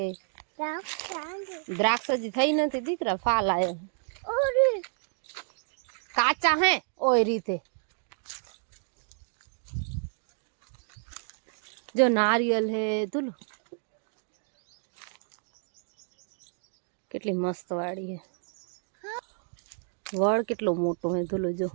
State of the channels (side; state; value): left; silent; 58 dB below the other